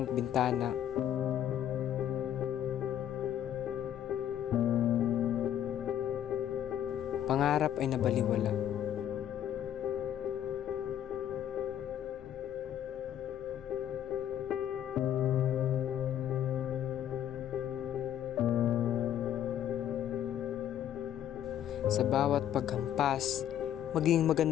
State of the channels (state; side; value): quieter; right; 10.7 dB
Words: bintana, pangarap ay nabaliwala. Sa bawat paghampas, maging